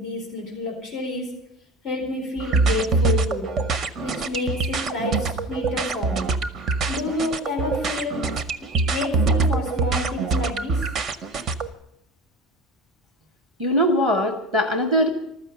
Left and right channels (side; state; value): both; normal; correlation 0.31